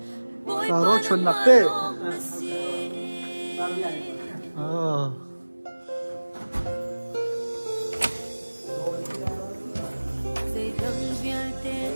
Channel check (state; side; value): inverted; both; correlation -1.00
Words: cả rô chuẩn nạc tê